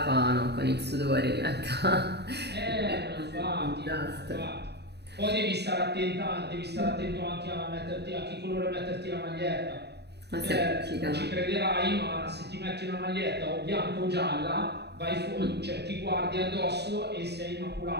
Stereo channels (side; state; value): left; late; 0.48 ms